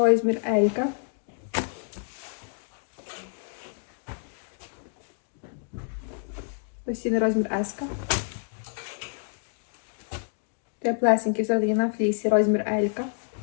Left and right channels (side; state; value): right; silent; 59 dB below the other